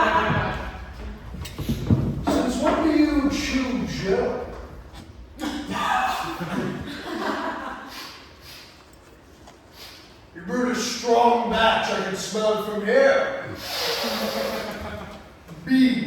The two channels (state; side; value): identical; both; correlation 1.00